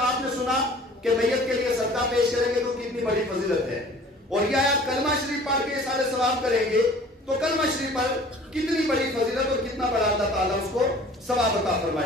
نے سنا کہ میت کے لیے صدقہ پیش کریں گے تو کتنی بڑی فضیلت ہے, اور یہ آیات کلمہ شریف پڑھ کے احسان ثواب کریں گے تو کلمہ شریف پر کتنی بڑی فضیلت اور کتنا بڑا اللہ تعالیٰ اس کو ثواب عطا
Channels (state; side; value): normal; both; correlation 0.48